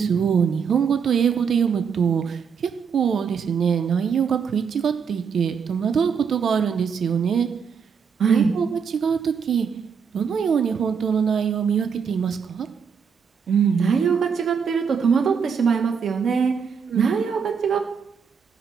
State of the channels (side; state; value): left; quieter; 6.5 dB